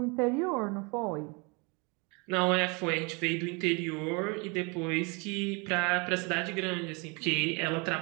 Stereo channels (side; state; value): left; quieter; 30.1 dB